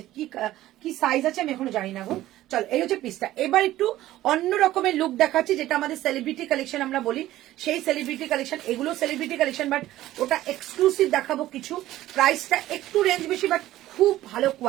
কি সাইজ আছে আমি এখনো জানি না গো। চল, এই হচ্ছে পিসটা। এবার একটু অন্য রকমের লুক দেখাচ্ছি, যেটা আমাদের সেলিব্রিটি কালেকশন আমরা বলি, সেই সেলিব্রিটি কালেকশন। এগুলো সেলিব্রিটি কালেকশন, বাট ওটা এক্সক্লুসিভ দেখাবো কিছু। প্রাইসটা একটু রেঞ্জ বেশি, বাট খুব ভালো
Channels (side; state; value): left; quieter; 14.9 dB